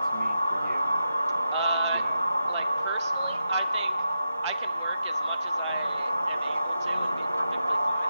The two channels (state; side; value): inverted; both; correlation -0.87